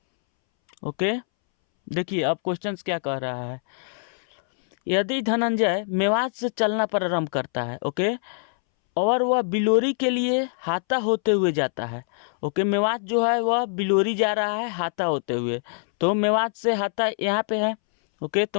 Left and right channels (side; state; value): right; silent; 62 dB below the other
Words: ओके, देखिए अब क्वेश्चंस क्या कह रहा है। यदि धनंजय मेवात से चलना प्रारंभ करता है, ओके, और वह बिलोरी के लिए हाता होते हुए जाता है। ओके, मेवात जो है वह बिलोरी जा रहा है हाता होते हुए, तो मेवात से हाता यहाँ पे है। ओके, तो